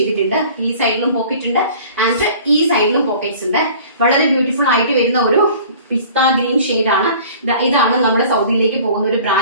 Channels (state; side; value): inverted; both; correlation -0.47